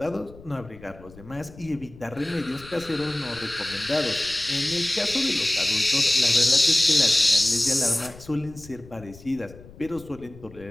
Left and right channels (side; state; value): left; noise; rumble, 20 dB below the sound